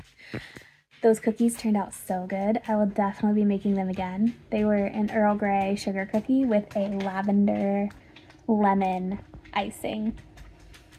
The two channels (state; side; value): identical; both; correlation 1.00